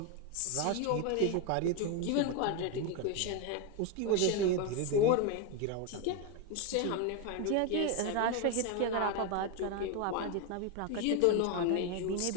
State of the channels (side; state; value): both; different; correlation 0.02